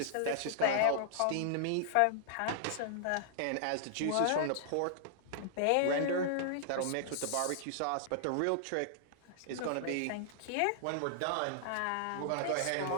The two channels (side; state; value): both; different; correlation -0.01